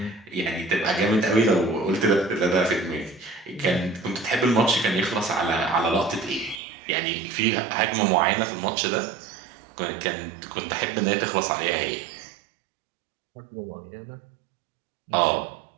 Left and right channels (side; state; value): left; drops out; at 6.6 s